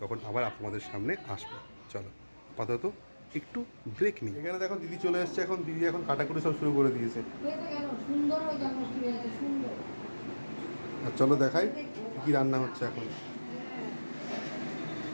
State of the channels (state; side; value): inverted; both; correlation -1.00